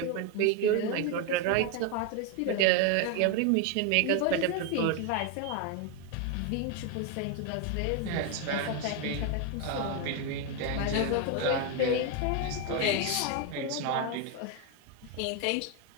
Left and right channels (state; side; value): different; both; correlation 0.01